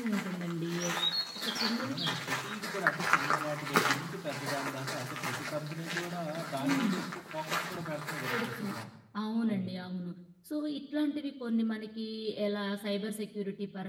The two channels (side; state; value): both; identical; correlation 1.00